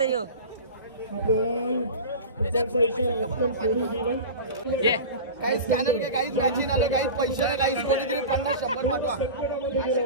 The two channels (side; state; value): both; inverted; correlation -0.31